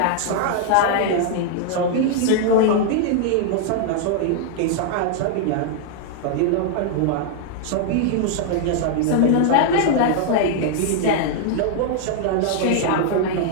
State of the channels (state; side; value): different; both; correlation 0.00